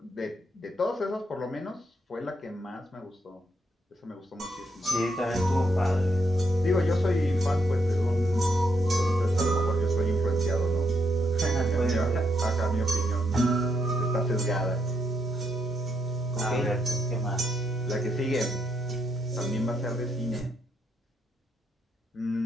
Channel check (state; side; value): normal; both; correlation 0.78